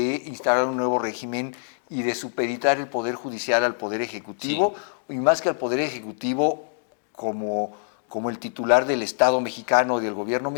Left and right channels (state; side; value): silent; right; digital silence